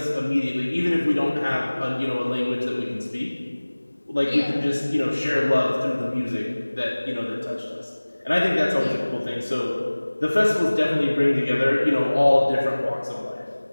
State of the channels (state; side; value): inverted; both; correlation -1.00